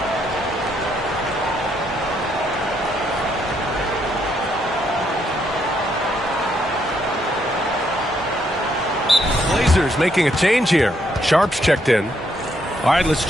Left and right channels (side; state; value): both; normal; correlation 0.74